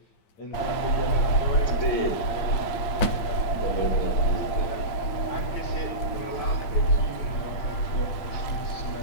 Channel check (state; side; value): late; right; 8.6 ms